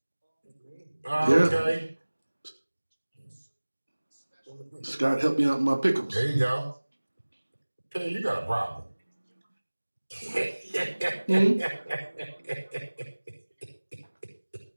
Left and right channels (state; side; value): inverted; both; correlation -1.00